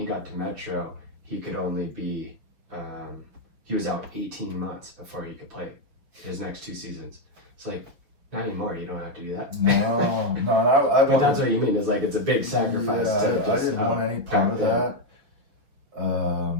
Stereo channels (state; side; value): late; left; 6.7 ms